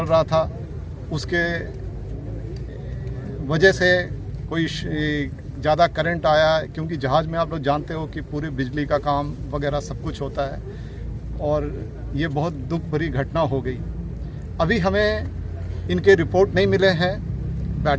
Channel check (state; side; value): identical; both; correlation 1.00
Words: रहा था उसके वजह से कोई ज़्यादा करंट आया, क्योंकि जहाज़ में आप लोग जानते हो कि पूरी बिजली का काम वगैरह सब कुछ होता है और ये बहुत दुख भरी घटना हो गई। अभी हमें इनके रिपोर्ट नहीं मिले हैं